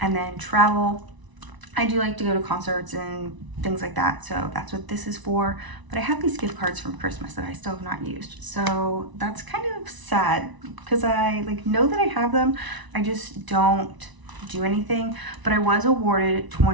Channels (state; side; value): late; left; 1.0 ms